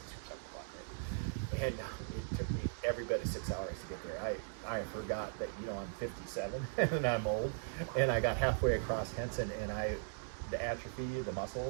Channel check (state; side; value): silent; left; digital silence